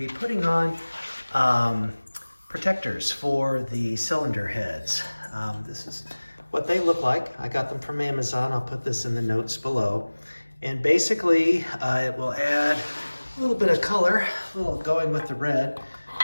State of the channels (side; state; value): both; inverted; correlation -1.00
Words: putting on protectors for the cylinder heads. This is what they look like. I got them from Amazon. I'll put this in the notes below. And basically, it will add a little bit of color, a little going with the red,